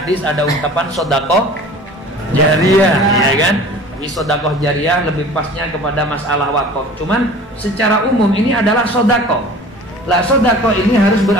ada ungkapan sodakoh jariyah, ya kan? Tapi sodakoh jariyah lebih pasnya kepada masalah wakaf. Cuman secara umum ini adalah sodakoh. Lah sodakoh ini harus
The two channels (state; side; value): normal; both; correlation 0.43